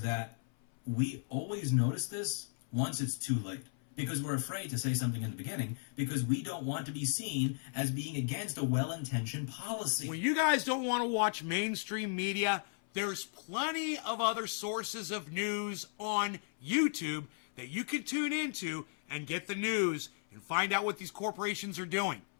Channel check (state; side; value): silent; right; 54 dB below the other